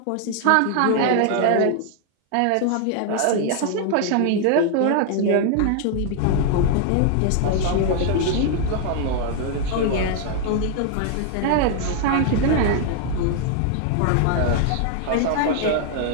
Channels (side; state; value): both; different; correlation 0.00